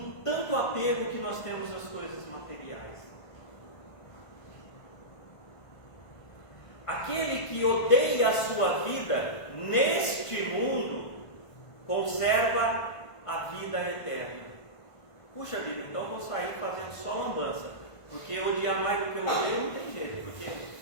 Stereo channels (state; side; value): late; right; 1.5 ms